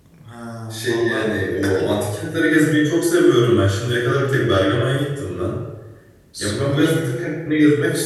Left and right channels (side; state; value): both; identical; correlation 1.00